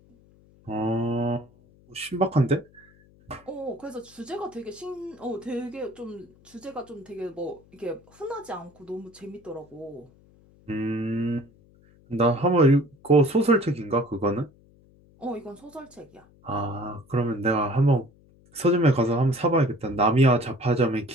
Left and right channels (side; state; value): left; noise; hum, 28 dB below the sound